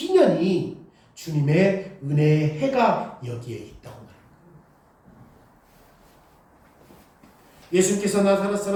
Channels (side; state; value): both; identical; correlation 1.00